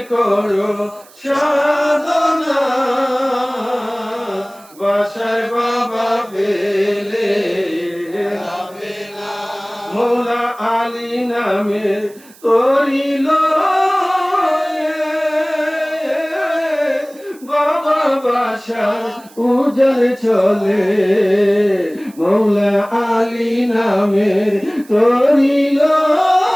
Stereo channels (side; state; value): right; noise; hiss, 25 dB below the sound